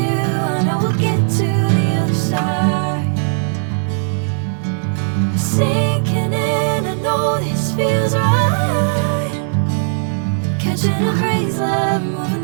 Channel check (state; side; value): silent; left; digital silence